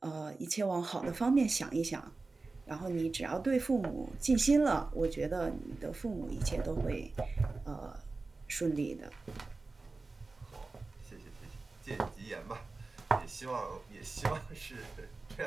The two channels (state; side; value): quieter; left; 3.7 dB